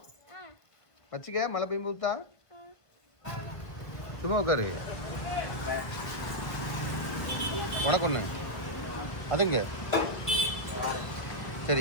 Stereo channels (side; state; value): right; late; 1.5 ms